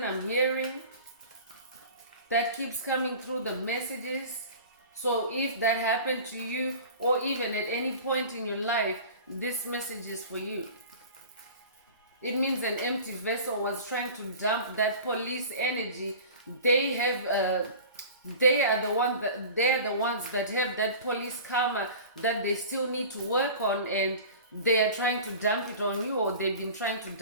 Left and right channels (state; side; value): inverted; both; correlation -0.39